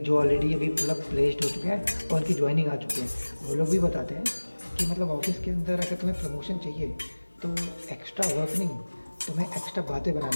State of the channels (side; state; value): both; inverted; correlation -1.00